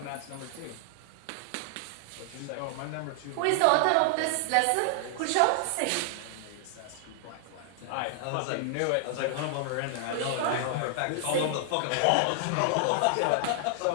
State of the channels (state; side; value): different; both; correlation 0.00